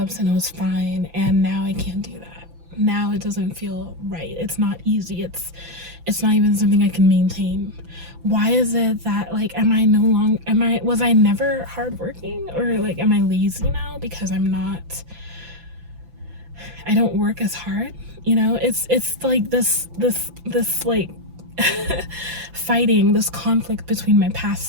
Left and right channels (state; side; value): late; left; 5.9 ms